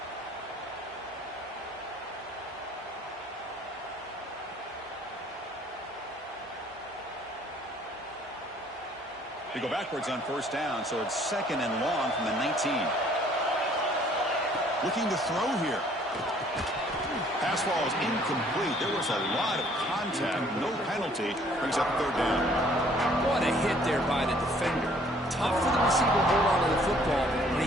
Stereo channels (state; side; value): normal; both; correlation 0.59